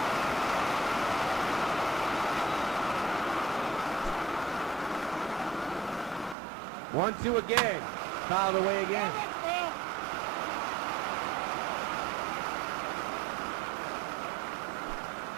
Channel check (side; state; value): left; drops out; at 6.4 s